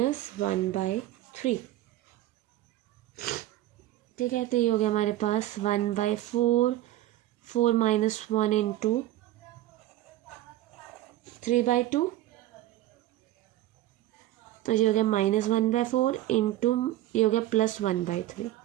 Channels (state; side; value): quieter; left; 14.9 dB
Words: ठीक है, तो ये हो गया हमारे पास 1/4, 4 - 1 इंटू 3/2, तो ये हो गया -1/4 इंटू, ये हो गया +1/3।